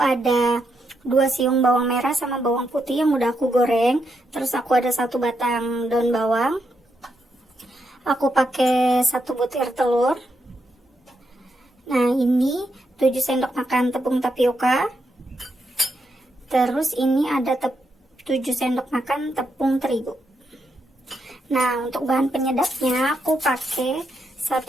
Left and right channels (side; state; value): both; normal; correlation 0.82